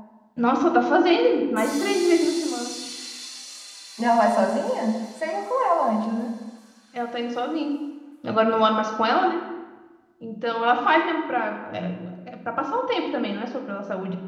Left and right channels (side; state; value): both; identical; correlation 1.00